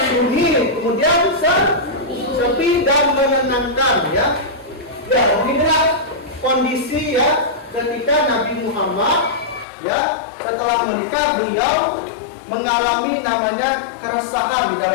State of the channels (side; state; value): right; drops out; at 9.7 s